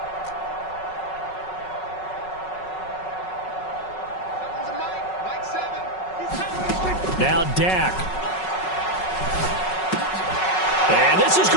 Now Dak. And this is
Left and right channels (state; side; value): late; right; 5.4 ms